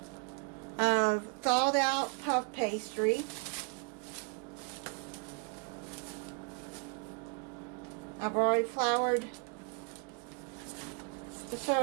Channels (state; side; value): quieter; left; 37.4 dB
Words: of thawed out puff pastry. I've already floured the